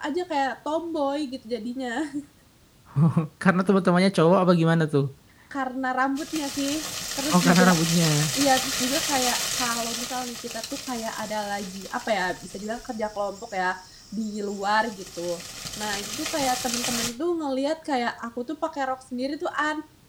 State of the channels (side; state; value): both; identical; correlation 1.00